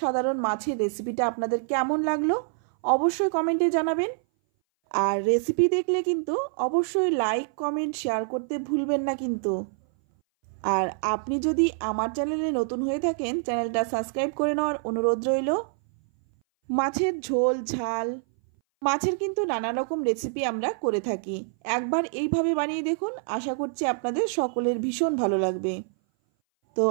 সাধারণ মাছের রেসিপিটা আপনাদের কেমন লাগলো অবশ্যই কমেন্টে জানাবেন। আর রেসিপি দেখলে কিন্তু অবশ্যই লাইক, কমেন্ট, শেয়ার করতে ভুলবেন না কিন্তু। আর আপনি যদি আমার চ্যানেলে নতুন হয়ে থাকেন চ্যানেলটা সাবস্ক্রাইব করে নেওয়ার অনুরোধ রইল। মাছের ঝোল, ঝাল, মাছের কিন্তু নানা রকম রেসিপি আমরা করে থাকি। একবার এইভাবে বানিয়ে দেখুন, আশা করছি আপনাদের সকলের ভীষণ ভালো লাগবে। তো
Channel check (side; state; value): left; silent; 59 dB below the other